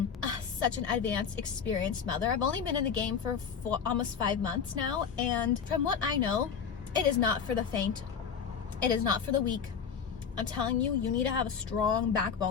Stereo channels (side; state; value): right; quieter; 6.8 dB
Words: such an advanced, experienced mother. I've only been in the game for almost 5 months now, and from what I know, it is not for the faint. It is not for the weak. I'm telling you, you need to have a strong